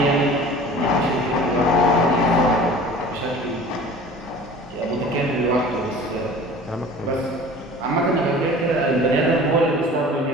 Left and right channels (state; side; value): normal; both; correlation 0.43